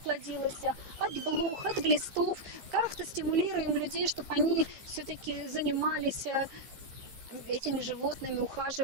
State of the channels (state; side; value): late; left; 15 ms